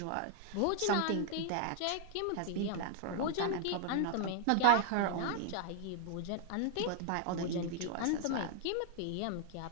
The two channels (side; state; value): both; different; correlation 0.00